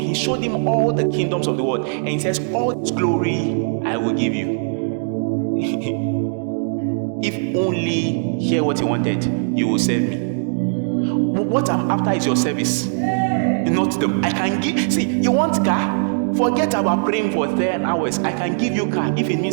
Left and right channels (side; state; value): left; silent; digital silence